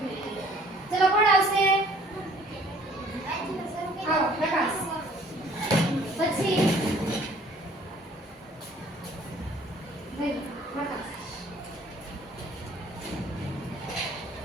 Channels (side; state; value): both; normal; correlation 0.56